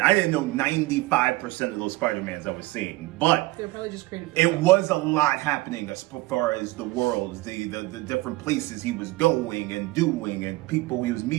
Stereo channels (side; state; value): left; quieter; 20.4 dB